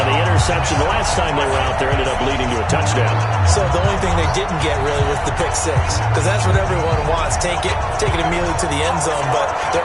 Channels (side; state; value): both; identical; correlation 1.00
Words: the interception the last time they were out there ended up leading to a touchdown. So the only thing they didn't get really was the pick 6, because that's what everyone wants. Take it immediately to the end zone, but their